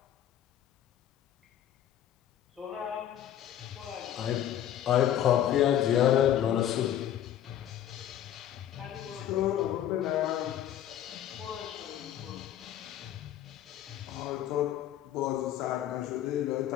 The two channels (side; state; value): right; quieter; 11.1 dB